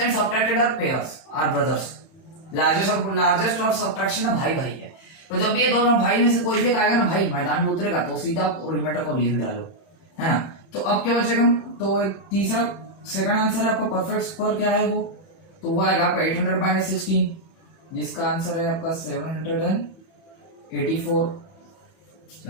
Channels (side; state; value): right; late; 30 ms